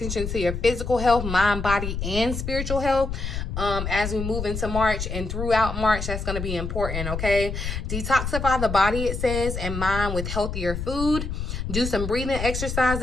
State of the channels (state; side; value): noise; left; rumble, 4 dB below the sound